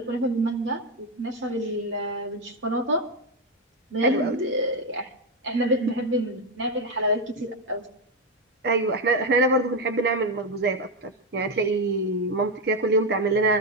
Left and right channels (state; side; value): normal; both; correlation 0.07